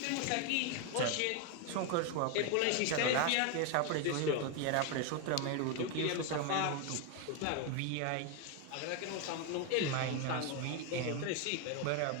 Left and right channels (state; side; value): different; both; correlation 0.01